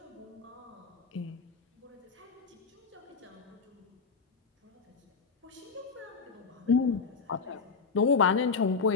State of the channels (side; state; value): right; quieter; 5.0 dB